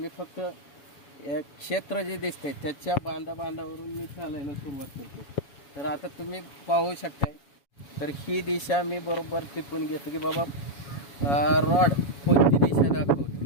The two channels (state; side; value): late; right; 7.2 ms